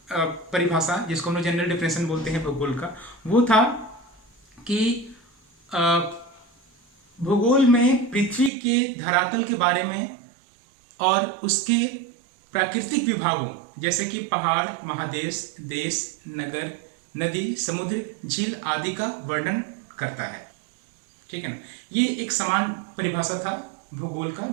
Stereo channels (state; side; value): drops out; left; at 8.5 s